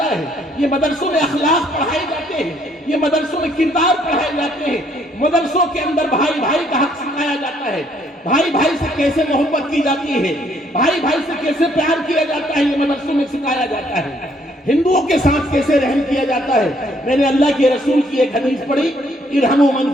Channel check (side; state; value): both; normal; correlation 0.66